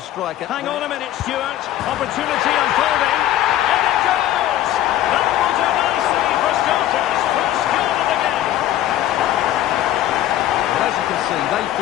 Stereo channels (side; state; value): right; quieter; 13.0 dB